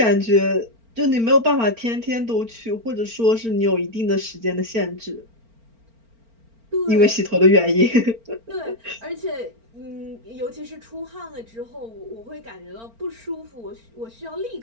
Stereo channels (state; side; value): late; left; 4.4 ms